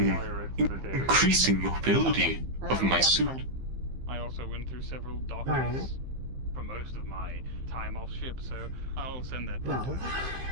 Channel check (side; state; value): left; late; 15 ms